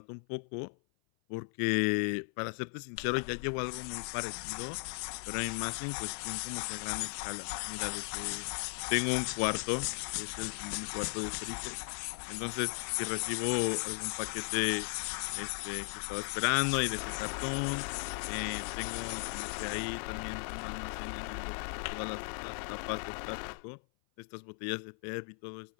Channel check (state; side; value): silent; right; 54 dB below the other